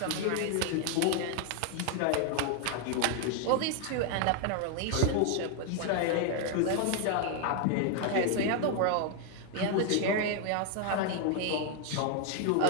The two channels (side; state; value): both; different; correlation 0.00